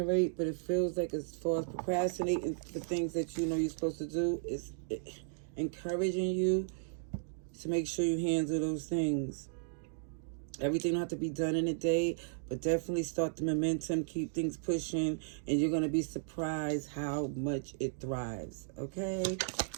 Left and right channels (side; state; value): left; silent; digital silence